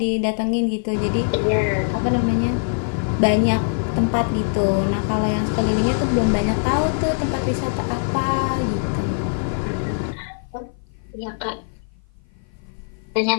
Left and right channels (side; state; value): right; silent; 55 dB below the other